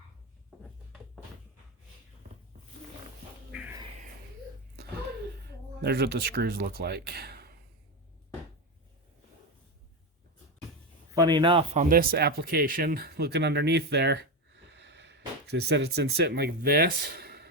There's what the screws look like. Funny enough, on this application, looking underneath there, they said it's been sitting like this.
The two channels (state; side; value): normal; both; correlation 0.13